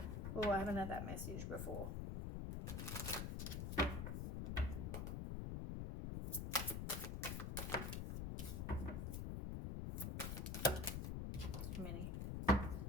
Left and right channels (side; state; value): left; noise; rumble, 2 dB below the sound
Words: Oh, I haven't had that message before. Too many.